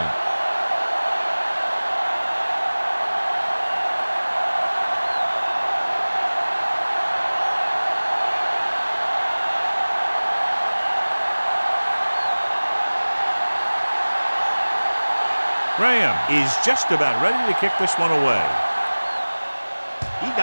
Graham is just about ready to kick this one away. He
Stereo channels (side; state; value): both; inverted; correlation -1.00